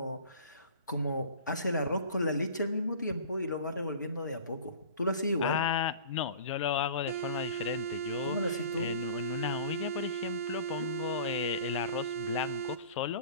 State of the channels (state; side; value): inverted; both; correlation -0.41